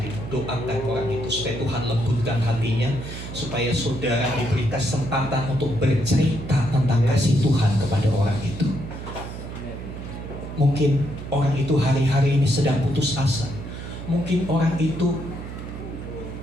Doakan orang itu supaya Tuhan lembutkan hatinya, supaya saudara diberi kesempatan untuk bercerita tentang kasih Tuhan kepada orang itu. Mungkin orang itu hari-hari ini sedang putus asa. Mungkin orang itu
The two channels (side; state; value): right; noise; hum, 9 dB below the sound